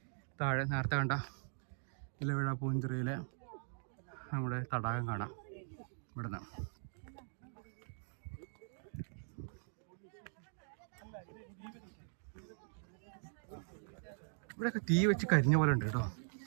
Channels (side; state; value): left; silent; digital silence